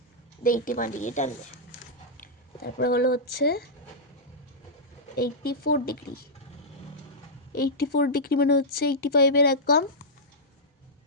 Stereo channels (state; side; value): normal; both; correlation -0.10